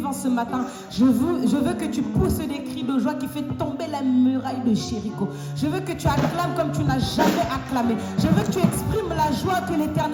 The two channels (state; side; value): identical; both; correlation 1.00